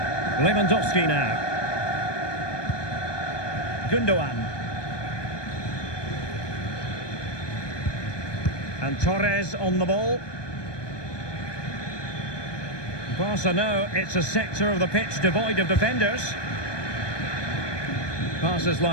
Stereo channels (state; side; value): late; right; 1.2 ms